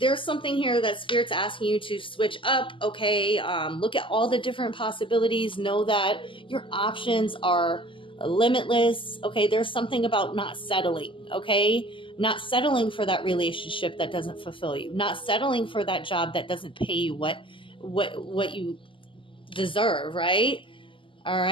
something here that Spirit's asking you to switch up. Okay, look at all the different possibilities. Know that your options are limitless. Okay, there's something about not settling. Okay, not settling for that relationship that doesn't fulfill you. Not settling for that job that doesn't pay you what you deserve. Right. All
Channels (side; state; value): right; late; 0.25 ms